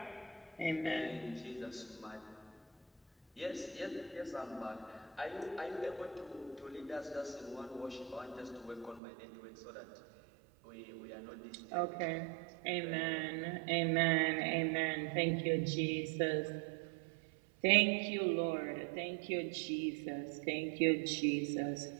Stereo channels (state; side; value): drops out; left; at 9.0 s